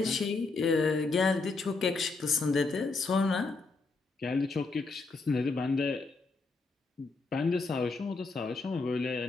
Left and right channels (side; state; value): right; quieter; 3.9 dB